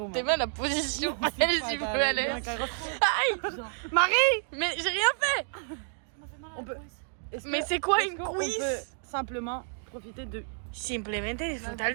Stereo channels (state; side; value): silent; left; 58 dB below the other